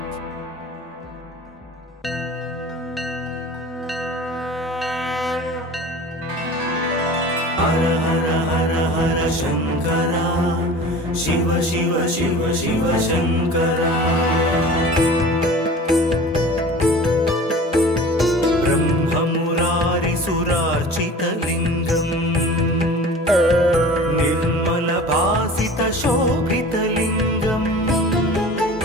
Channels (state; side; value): normal; both; correlation 0.40